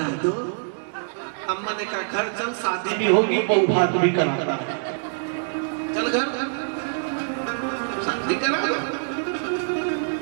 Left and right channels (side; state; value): left; silent; digital silence